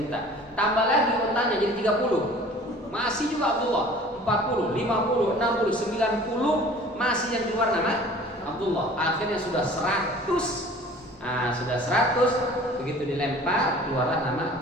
unta. Tambah lagi ontanya jadi 30. Masih juga Abdullah. 40, 50, 60, 90 masih yang keluar nama Abdullah. Akhirnya sudah 100. Sudah 100, begitu dilempar keluarlah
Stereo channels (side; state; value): both; normal; correlation 0.47